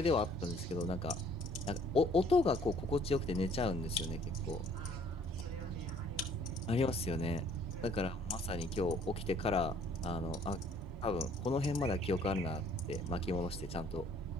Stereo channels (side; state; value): both; normal; correlation 0.59